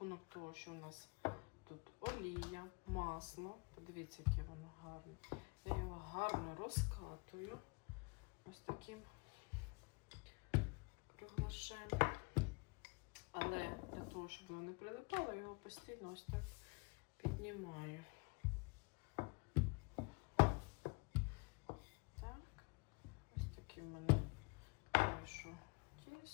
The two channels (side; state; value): right; quieter; 28.8 dB